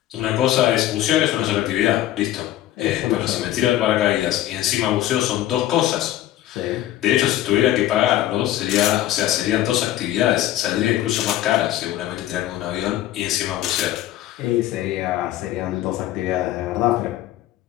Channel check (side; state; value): right; quieter; 13.7 dB